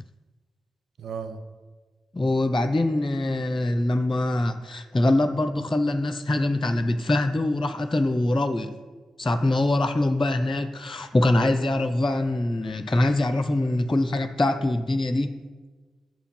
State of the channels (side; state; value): both; normal; correlation 0.94